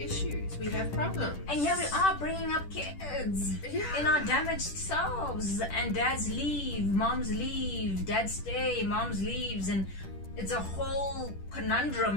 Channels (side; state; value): right; late; 10 ms